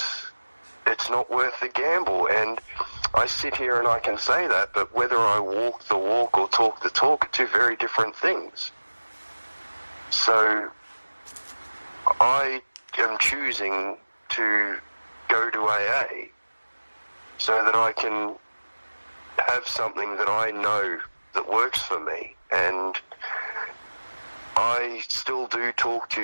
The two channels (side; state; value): both; inverted; correlation -1.00